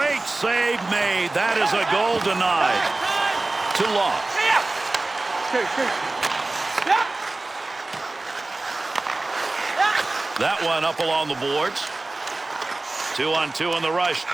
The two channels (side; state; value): left; quieter; 3.0 dB